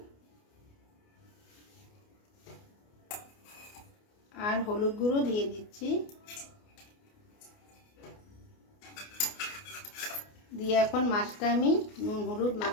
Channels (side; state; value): right; late; 29 ms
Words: আর হলুদ গুঁড়ো দিয়ে দিচ্ছি, দিয়ে এখন মাছটা আমি নুন হলুদ